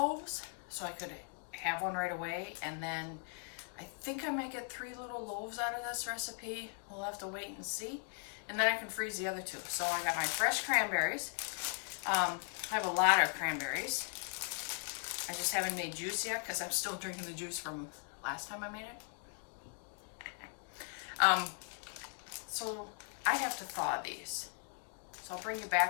so I could have one right away. And then I think I might get 3 little loaves out of this recipe. We'll have to wait and see. And then I can freeze the other 2. So I got my fresh cranberries. I have a lot of cranberries. I just haven't made juice yet because I'm still drinking the juice from last time I made it. So I have to thaw these. So I'll bring you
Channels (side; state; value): right; silent; 52 dB below the other